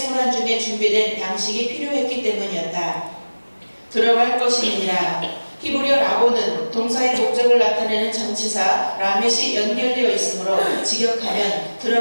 중에 준비된 양식이 필요했기 때문이었다. 들어갈 것이니라. 히브리어 라보는 동사의 목적을 나타내는 전치사 라멧이 연결되어 있으므로 직역하면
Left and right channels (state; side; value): inverted; both; correlation -1.00